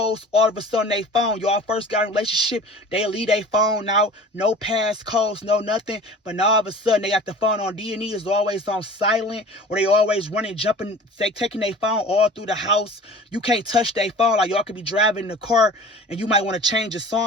all of a sudden they phone. Y'all first got a relationship, they leave their phone out, no passcodes, no nothing. But now all of a sudden they got the phone on D&E, is always on silent, or they always running, jumping, taking their phone all through the house. You can't touch their phone. Like y'all could be driving in the car and you might want to change a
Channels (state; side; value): normal; both; correlation 0.42